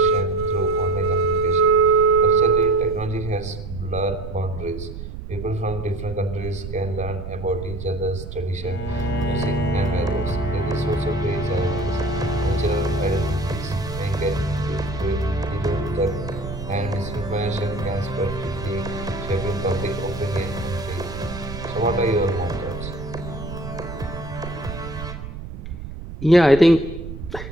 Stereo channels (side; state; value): right; noise; rumble, 9 dB below the sound